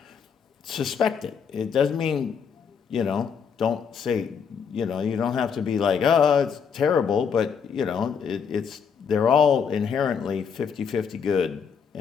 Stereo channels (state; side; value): quieter; right; 6.7 dB